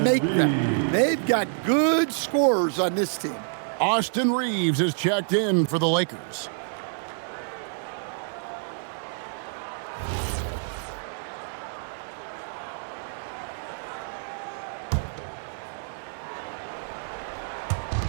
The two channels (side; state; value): left; silent; digital silence